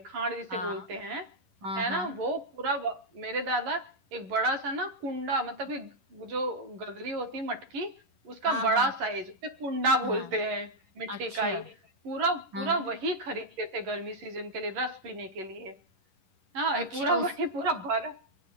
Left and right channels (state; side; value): late; left; 11 ms